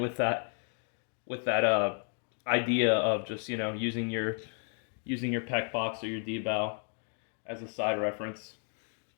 that idea of just, you know, using your PEC box or your D-bow as a side reference.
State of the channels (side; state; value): right; silent; 56 dB below the other